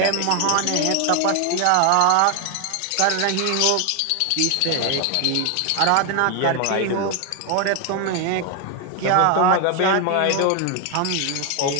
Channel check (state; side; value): different; both; correlation 0.00